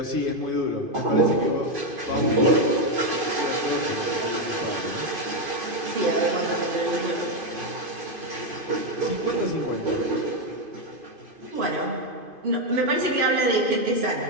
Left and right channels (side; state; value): left; late; 2.5 ms